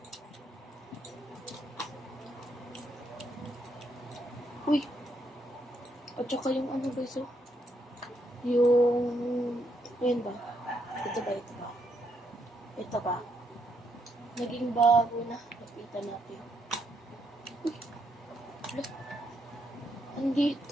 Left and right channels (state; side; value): normal; both; correlation 0.76